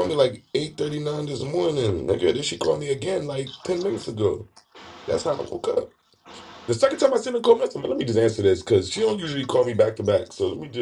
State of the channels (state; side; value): identical; both; correlation 1.00